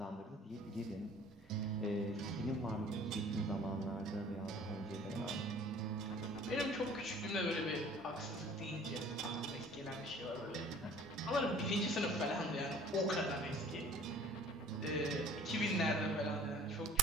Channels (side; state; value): both; normal; correlation 0.51